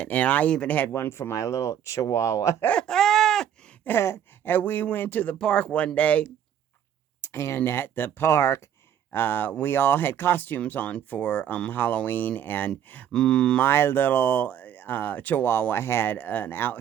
And I even had one for my little chihuahua. And we went to the park one day, and at the park, we all had costumes on for Halloween, and my little chihuahua had an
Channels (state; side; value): quieter; left; 9.5 dB